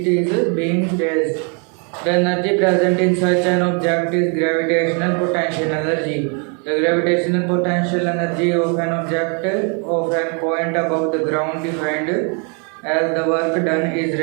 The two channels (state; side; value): quieter; left; 37.0 dB